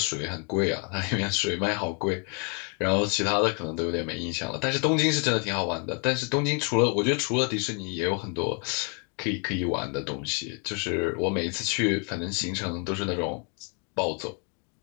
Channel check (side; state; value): right; quieter; 38.0 dB